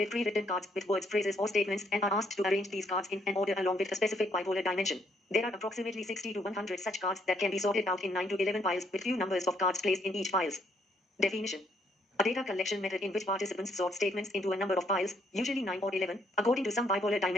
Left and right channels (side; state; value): both; normal; correlation 0.70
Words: pre-written cards with words, phrases, or statements and are asked to arrange these cards in an order along with a specific bipolar dimension. There are approximately 60 to 100 such cards that can be sorted out in 9 to 11 piles with few numbers of cards placed in each piles. Definition. A data collection method in which participants sort statements into a number of piles, usually 9 or 11, according to some bipolar